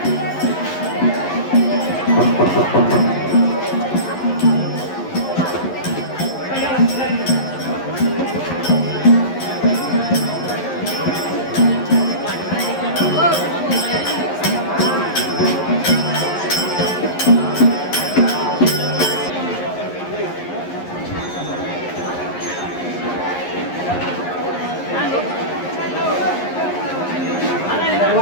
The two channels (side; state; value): right; late; 11 ms